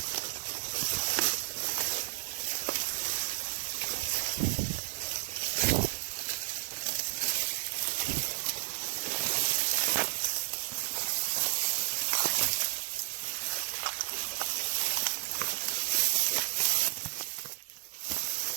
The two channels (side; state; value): left; silent; digital silence